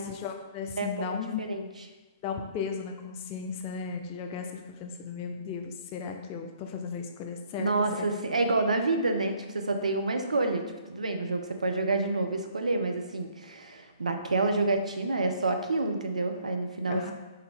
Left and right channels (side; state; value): both; inverted; correlation -0.63